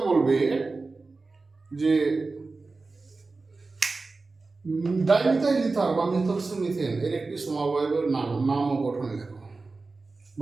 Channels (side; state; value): left; quieter; 3.8 dB